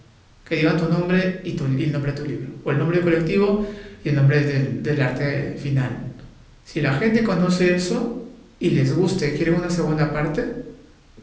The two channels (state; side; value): identical; both; correlation 1.00